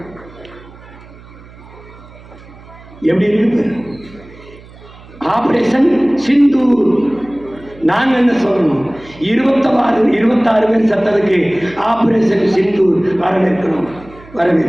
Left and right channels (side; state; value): right; noise; hum, 21 dB below the sound